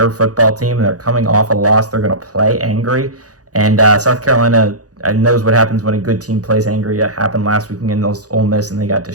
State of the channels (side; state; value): left; late; 0.67 ms